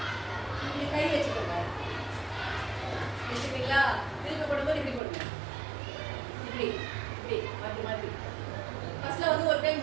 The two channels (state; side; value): drops out; left; at 5.0 s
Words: இப்படி கை வச்சுக்கோங்க. வச்சுக்கிங்களா? திருப்பி போடும்போது இப்படி போடுங்க, இப்படி இப்படி மாற்றி மாற்றி. ஃபர்ஸ்ட்ல வந்து ஒரு கை